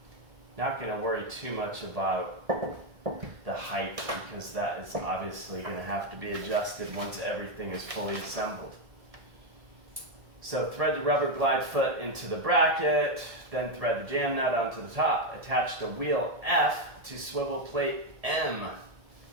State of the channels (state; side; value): late; left; 1.7 ms